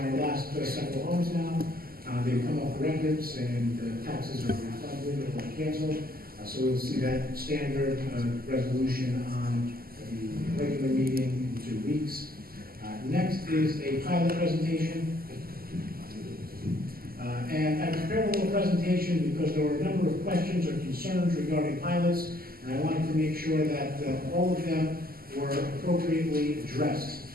last several homes now, they've come off the records and the taxes are refunded or canceled. So we'll see that standard resolution on the regular meeting in 2 weeks. Next is a pilot presentation. And I prepared a little presentation because there were a number of questions or concerns regarding pilots, and I wanted to make sure that all of them were appropriately addressed.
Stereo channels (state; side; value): late; left; 0.43 ms